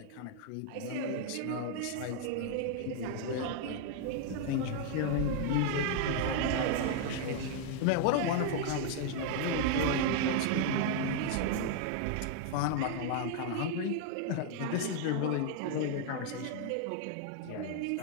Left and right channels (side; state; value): both; different; correlation 0.00